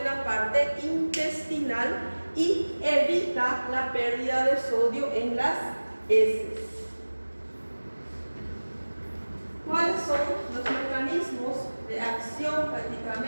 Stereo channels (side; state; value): both; inverted; correlation -1.00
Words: la parte intestinal y evita la pérdida de sodio en las heces. ¿Cuáles son los mecanismos de acción